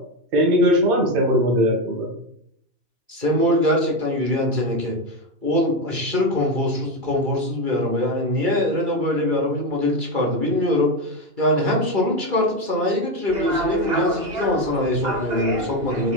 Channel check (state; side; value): late; left; 2.3 ms